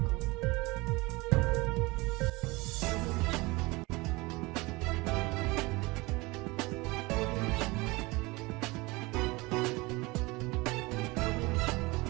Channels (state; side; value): quieter; left; 23.6 dB